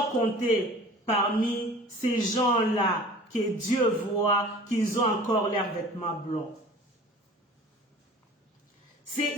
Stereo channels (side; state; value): both; normal; correlation 0.44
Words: compté parmi ces gens-là que Dieu voit qu'ils ont encore leurs vêtements blancs.